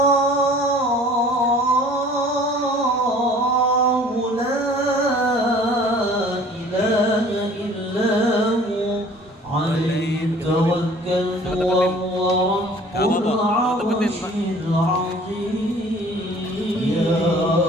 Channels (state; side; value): normal; both; correlation 0.50